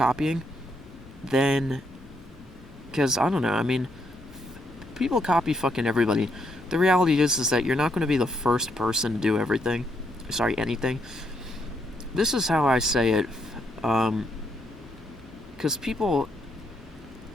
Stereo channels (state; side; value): normal; both; correlation 0.76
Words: then, because I don't know, I mean, people copy fucking everybody. The reality is that you're not going to be the first person to do anything. This is how I say it, because people